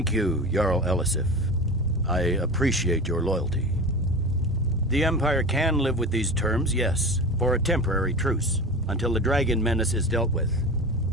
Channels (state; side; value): normal; both; correlation 0.30